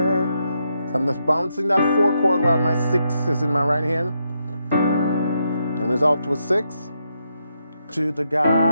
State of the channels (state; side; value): inverted; both; correlation -0.80